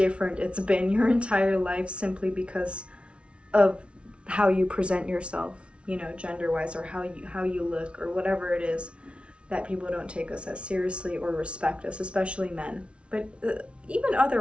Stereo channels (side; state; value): left; late; 0.060 ms